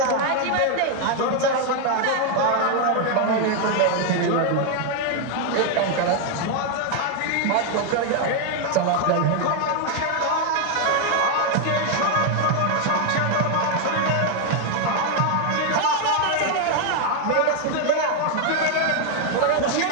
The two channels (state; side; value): different; both; correlation 0.01